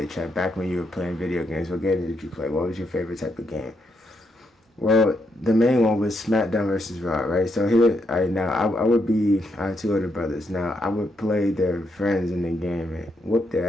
chat? Back when you were playing video games, what game did you play? What was your favorite type of game? Well, the main one was SmackDown versus Raw, right? So here, I have two older brothers. Now, I would play their friends in the game and whoop their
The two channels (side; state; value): both; normal; correlation 0.79